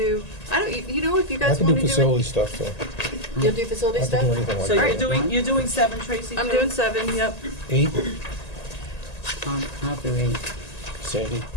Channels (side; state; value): right; late; 1.8 ms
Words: I don't, if you I guys can want do to do facility it. stuff, so. You'll do facility I can do stuff? anything like So that. you're doing 7, Tracy? I'm too? doing 7, yep. 8, I'll do 8. Sandy.